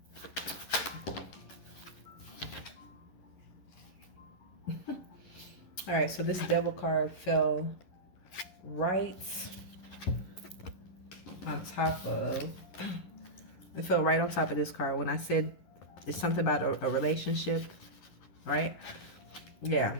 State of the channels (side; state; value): right; late; 11 ms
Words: All right, so this Devil card fell right on top of. It fell right on top of this card when I said it's something about a relationship, right?